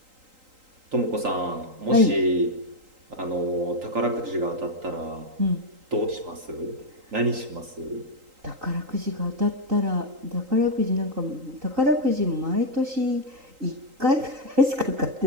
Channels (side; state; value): left; late; 3.8 ms